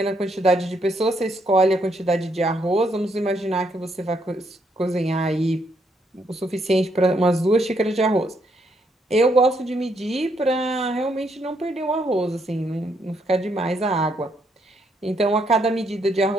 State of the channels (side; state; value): both; normal; correlation 0.74